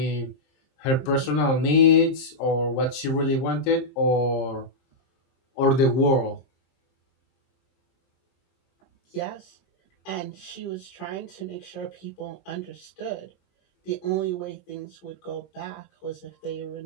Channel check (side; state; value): right; late; 23 ms